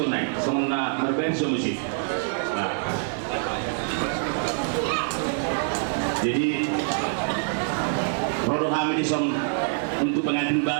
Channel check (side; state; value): left; silent; 61 dB below the other